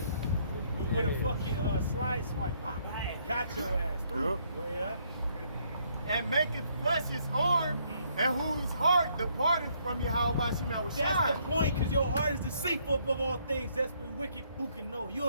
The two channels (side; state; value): both; inverted; correlation -0.69